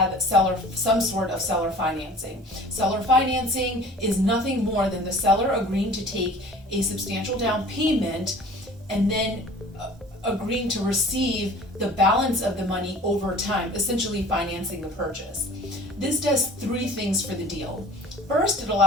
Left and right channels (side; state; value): both; normal; correlation 0.46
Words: some sort of seller financing. Seller financing is nothing more than the seller agreeing to take a substantial down payment and then agreeing to receive the balance of the money over time, essentially financing the purchase. This does three things for the deal. First, it